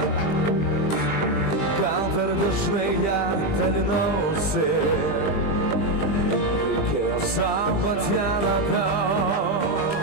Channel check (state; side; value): late; right; 20 ms